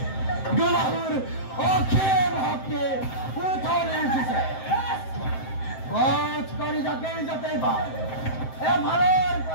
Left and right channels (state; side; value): late; right; 7.7 ms